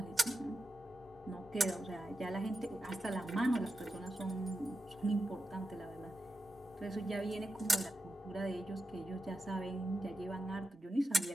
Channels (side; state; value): both; normal; correlation 0.89